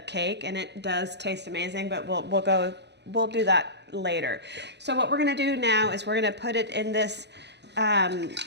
cake, and it does taste amazing, but we'll do that later. So what we're gonna do now is we're gonna put it in this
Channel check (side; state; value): left; late; 0.50 ms